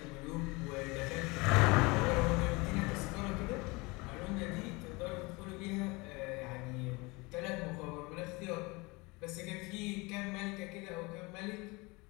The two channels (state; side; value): quieter; right; 25.3 dB